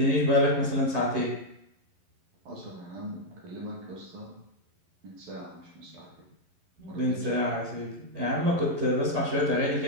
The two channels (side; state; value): left; late; 11 ms